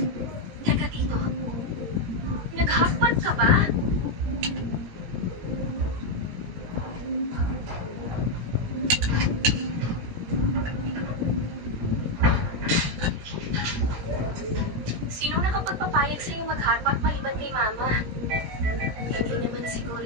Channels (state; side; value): late; left; 17 ms